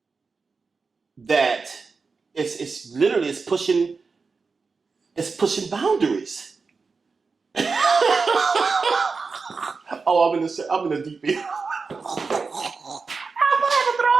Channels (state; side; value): quieter; left; 4.6 dB